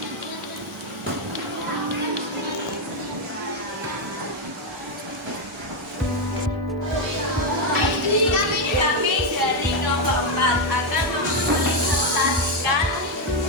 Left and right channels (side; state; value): both; normal; correlation 0.05